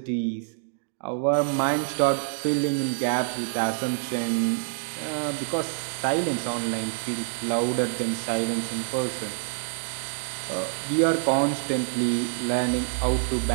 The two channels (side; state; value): left; silent; 61 dB below the other